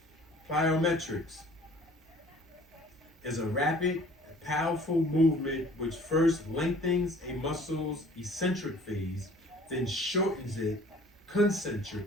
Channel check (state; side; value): normal; both; correlation 0.52